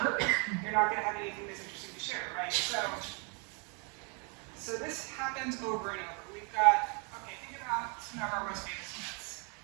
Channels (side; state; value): left; quieter; 35.0 dB